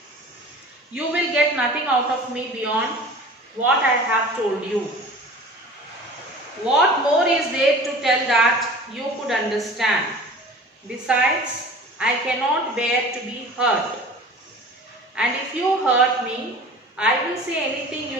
you will get nothing out of me beyond what I have told you. What more is there to tell that you could understand? Besides, I cannot bear to be hurt. And if you hurt me, I will say anything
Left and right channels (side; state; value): both; normal; correlation 0.41